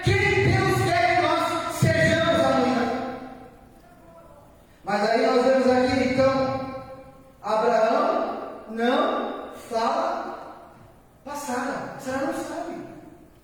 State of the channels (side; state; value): both; identical; correlation 1.00